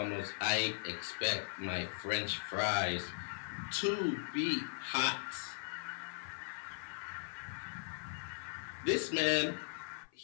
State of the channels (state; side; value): silent; right; 52 dB below the other